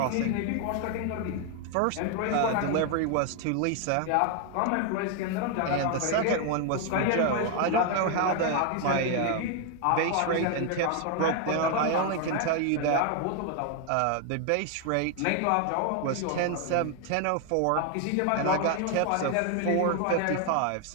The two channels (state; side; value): different; both; correlation 0.00